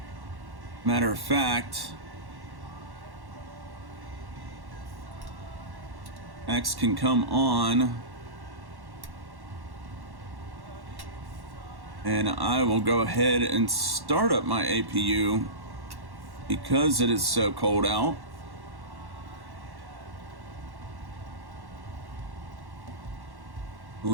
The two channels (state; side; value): late; left; 1.1 ms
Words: Matter of fact, X can come on, and I will go ahead and start up my APU because it is so cold out. I